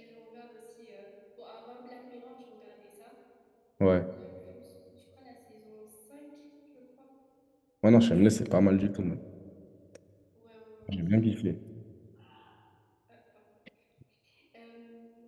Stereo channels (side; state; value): both; identical; correlation 1.00